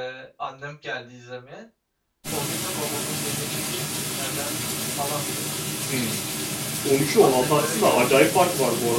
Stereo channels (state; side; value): identical; both; correlation 1.00